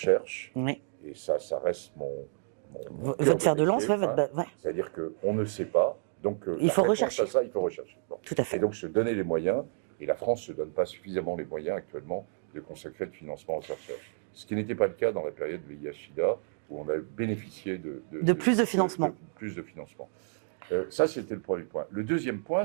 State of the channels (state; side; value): silent; left; digital silence